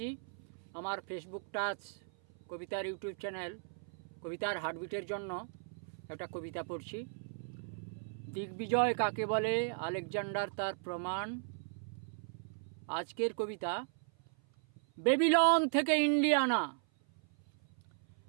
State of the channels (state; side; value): silent; left; 53 dB below the other